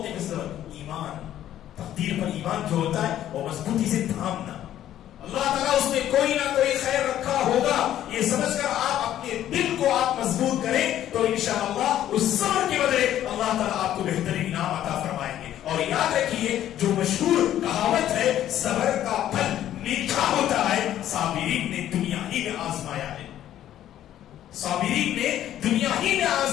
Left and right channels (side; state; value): right; quieter; 11.9 dB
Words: پہ صبر. ایمان تقدیر پر ایمان جو ہوتا ہے وہ مضبوطی سے تھامنا. اللہ تعالیٰ اس میں کوئی نہ کوئی خیر رکھا ہوگا، یہ سمجھ کر آپ اپنے دل کو آپ مضبوط کریں تو انشاءاللہ اس صبر کے بدلے اللہ تعالیٰ آپ کو بہترین انعام عطا فرمائیں گے. اور یاد رکھیے جو مشہور کہاوت ہے صبر کا پھل میٹھا ہوتا ہے، صابرین نے دنیا ہی میں آزمایا ہے. صابرین نے دنیا ہی میں